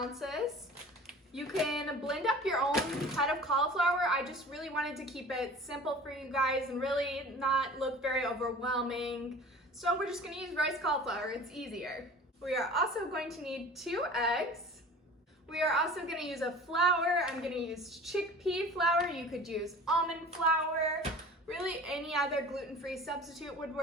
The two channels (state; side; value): normal; both; correlation 0.42